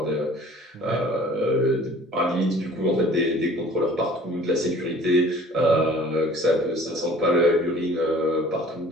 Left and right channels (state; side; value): normal; both; correlation 0.49